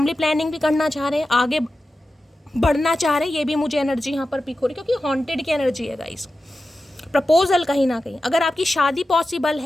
प्लानिंग भी करना चाह रहे हैं, आगे बढ़ना चाह रहे हैं, ये भी मुझे एनर्जी यहाँ पर पिक हो रही है क्योंकि हॉन्टेड की एनर्जी है गाइस। प्रपोजल कहीं ना कहीं, अगर आपकी शादी पॉसिबल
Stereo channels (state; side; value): normal; both; correlation 0.93